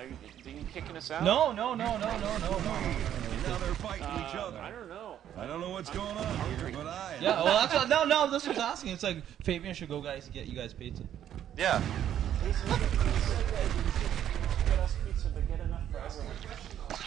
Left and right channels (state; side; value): quieter; left; 10.6 dB